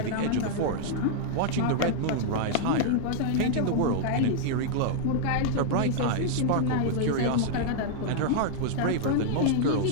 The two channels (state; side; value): different; both; correlation -0.01